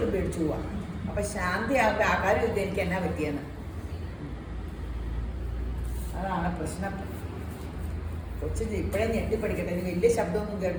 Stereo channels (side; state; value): both; identical; correlation 1.00